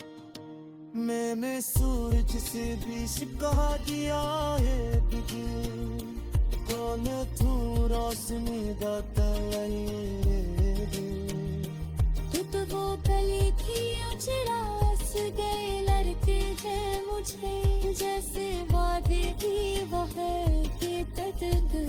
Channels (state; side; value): identical; both; correlation 1.00